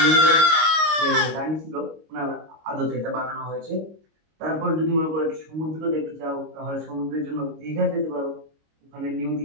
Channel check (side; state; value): left; late; 25 ms